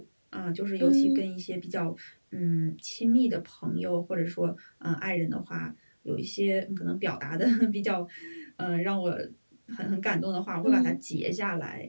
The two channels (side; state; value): both; inverted; correlation -1.00